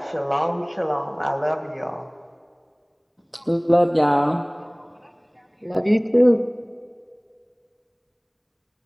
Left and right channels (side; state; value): both; identical; correlation 1.00